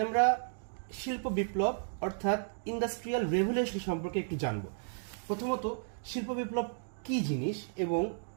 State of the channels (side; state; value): left; silent; digital silence